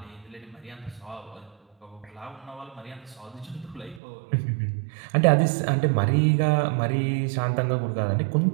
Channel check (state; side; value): drops out; left; at 4.0 s